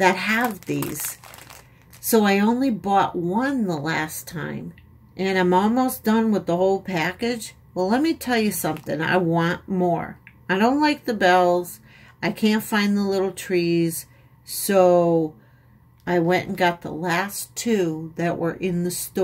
have these. So I only bought one the last time. And I'm almost done with the whole package. Well, let me tell you something. I want more. I don't like the bells. I can't find the little trees. So I went and got the last two that were in the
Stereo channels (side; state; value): both; identical; correlation 1.00